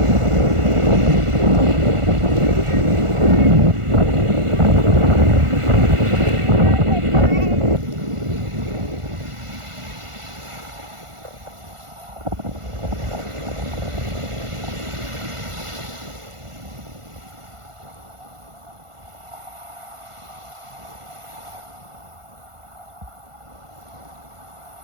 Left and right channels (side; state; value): left; late; 1.4 ms